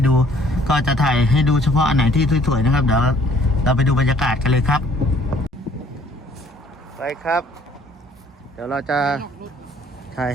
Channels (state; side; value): normal; both; correlation 0.59